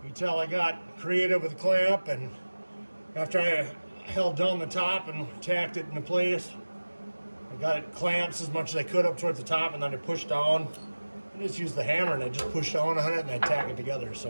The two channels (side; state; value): both; inverted; correlation -1.00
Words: You can tell I got creative with the clamp, and after I held down the top and tacked it into place, I got it clamps as much as I could up towards the top, and then I pushed down. I just used the hammer and I just pushed down on it and I tack it together.